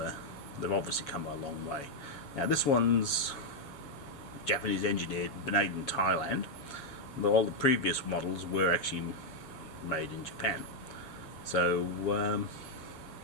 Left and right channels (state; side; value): late; right; 7.3 ms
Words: they've obviously come a long way. Now this one's Japanese engineered, made in Thailand. All the previous models were actually made in Japan. So